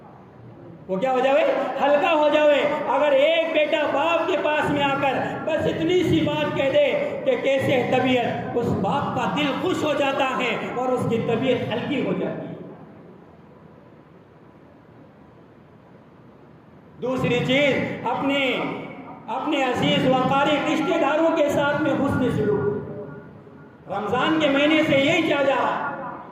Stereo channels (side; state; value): both; identical; correlation 1.00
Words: وہ کیا ہو جائے؟ ہلکا ہو جائے۔ اگر ایک بیٹا باپ کے پاس میں آ کر بس اتنی سی بات کہہ دے کہ کیسے طبیعت، اس باپ کا دل خوش ہو جاتا ہے اور اس کی طبیعت ہلکی ہو جاتی ہے۔ دوسری چیز، اپنے عزیز و قریب رشتہ داروں کے ساتھ میں حسن سلوک۔ رمضان کے مہینے سے یہی چاہ جا رہا